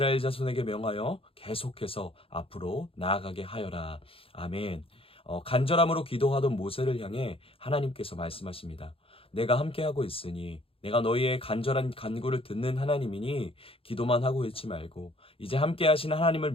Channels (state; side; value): late; right; 0.27 ms